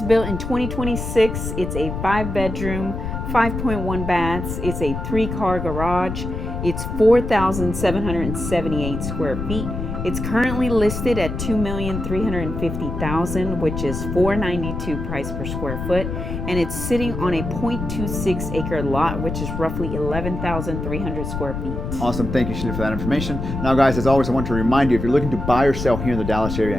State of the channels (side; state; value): left; noise; rumble, 5 dB below the sound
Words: built in 2026. It's a 5-bedroom, 5.1 baths. It's a 3-car garage. It's 4,778 square feet. It's currently listed at $2,350,000, which is $492 price per square foot, and it's sitting on a 0.26 acre lot, which is roughly 11,300 square feet. Awesome, thank you, Sheila, for that information. Now, guys, as always, I want to remind you, if you're looking to buy or sell here in the Dallas area